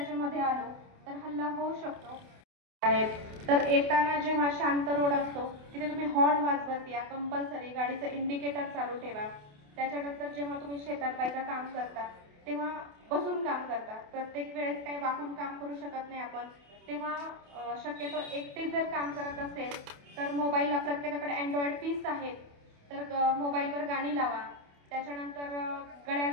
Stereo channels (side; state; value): left; late; 28 ms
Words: मध्ये आलो तर हल्ला होऊ शकतो. तर येताना जेव्हा शांत रोड असतो तिथे तुम्ही हॉर्न वाजवत या, कंपल्सरी गाडीचं इंडिकेटर चालू ठेवा. त्याच्यानंतर जेव्हा तुम्ही शेतात बायका काम करता तेव्हा बसून काम करता, प्रत्येक वेळेस काही वाकून काम करू शकत नाही आपण, तेव्हा शक्यतो एकटे जर काम करत असेल तर मोबाईलला प्रत्येकाकडे अँड्रॉइड पीस आहेत, तर मोबाईलवर गाणी लावा. त्याच्यानंतर